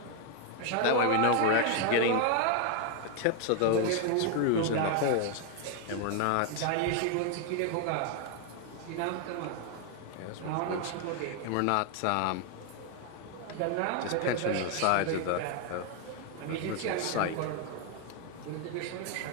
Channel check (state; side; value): different; both; correlation 0.01